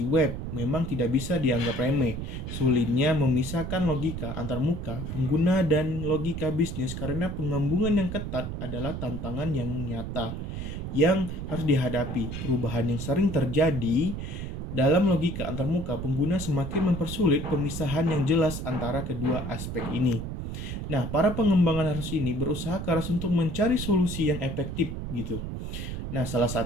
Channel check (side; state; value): right; noise; rumble, 5 dB below the sound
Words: web, memang tidak bisa dianggap remeh. Sulitnya memisahkan logika antarmuka pengguna dan logika bisnis karena penggabungan yang ketat adalah tantangan yang nyata yang harus dihadapi. Perubahan yang sering terjadi dalam logika antarmuka pengguna semakin mempersulit pemisahan yang jelas antara kedua aspek ini. Nah, para pengembangan harus ini berusaha keras untuk mencari solusi yang efektif gitu. Nah, salah